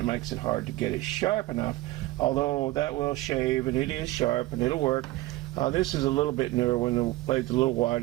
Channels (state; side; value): quieter; left; 17.8 dB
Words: makes it hard to get it sharp enough. Although that will shave, and it is sharp, and it'll work. This is a little bit newer when the blade's a little